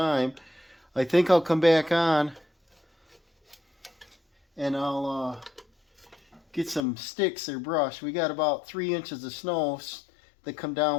I think I'll come back on and I'll get some sticks or brush. We got about 3 inches of snow that come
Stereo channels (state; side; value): drops out; right; at 6.8 s